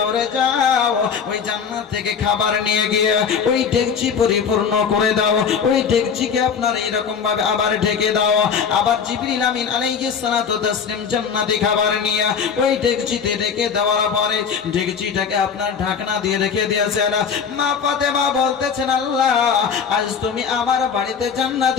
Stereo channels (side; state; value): right; quieter; 6.6 dB